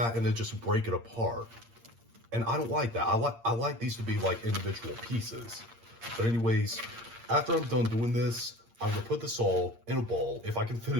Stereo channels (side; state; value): left; late; 8.7 ms